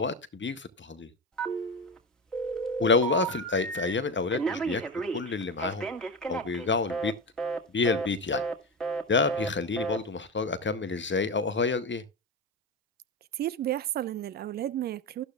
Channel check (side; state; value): both; normal; correlation 0.20